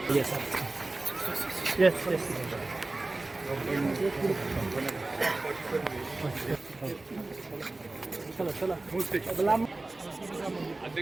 Yes. Yes. Yes. चला चला.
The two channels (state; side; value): quieter; left; 3.1 dB